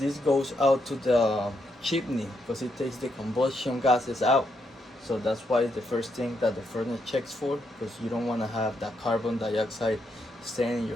goes out to the chimney, because it takes the combustion gases out. So that's why it's the first thing that the furnace checks for, because you don't want to have that carbon dioxide staying in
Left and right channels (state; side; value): normal; both; correlation 0.79